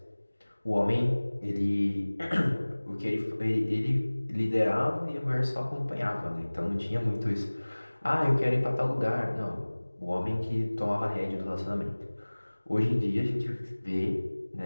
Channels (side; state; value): both; inverted; correlation -1.00